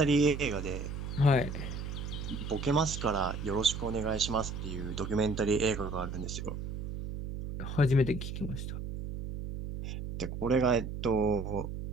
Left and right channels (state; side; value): noise; right; hum, 6 dB below the sound